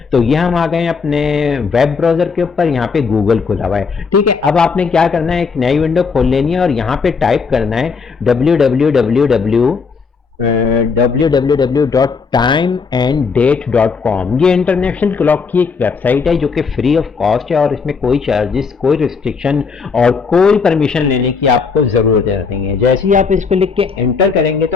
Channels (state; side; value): quieter; right; 5.2 dB